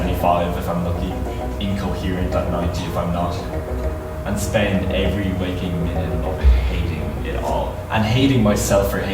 if I'm lucky, coherent at 90 if I'm not. And spend every waking minute of it hating it all. And hating myself for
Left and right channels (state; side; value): identical; both; correlation 1.00